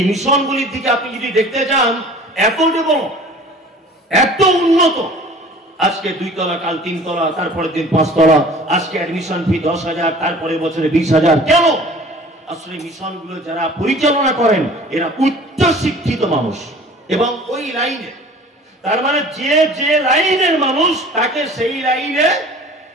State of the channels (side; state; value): both; normal; correlation 0.46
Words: মিশনগুলির দিকে আপনি যদি দেখতে যান, এত বড়, এত উন্নত, আজকে 2 তলা, কাল 3 তলা, তারপরে দিন 5 তলা, আজকে অ্যাডমিশন ফি 10,000, তারপরে বছরে 20,000। কেন? আসলে মিশনগুলো যারা পরিচালনা করেন এরা উচ্চ শিক্ষিত মানুষ এবং ওই লাইনে, তার মানে যে লাইনের মানুষ তাকে সেই লাইনে